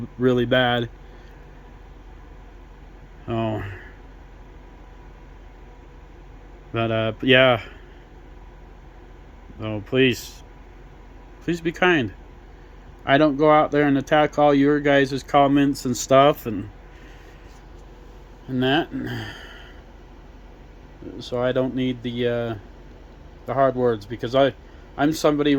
really bad. Oh, but yeah. Oh, please be kind. I don't go out there and attack all your guys' comments and stuff, and that. So I don't need the hard words, because I'm somebody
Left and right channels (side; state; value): both; identical; correlation 1.00